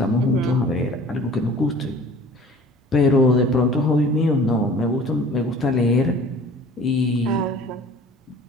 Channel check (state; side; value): normal; both; correlation 0.46